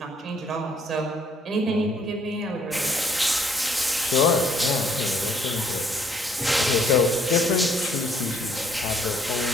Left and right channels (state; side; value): normal; both; correlation 0.65